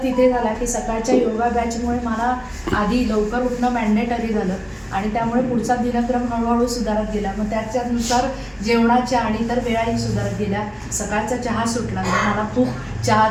तिथे झाला की सकाळच्या योगा बॅचमुळे मला आधी लवकर उठणं मॅन्डेटरी झालं आणि त्यामुळे पुढचा दिनक्रम हळूहळू सुधारत गेला. मग त्याच्यानुसार जेवणाच्या आणि इतर वेळाही सुधारत गेल्या. सकाळचा चहा सुटला, मला खूप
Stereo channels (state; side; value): identical; both; correlation 1.00